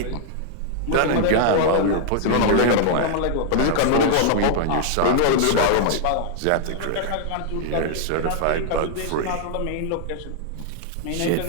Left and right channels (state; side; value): different; both; correlation -0.01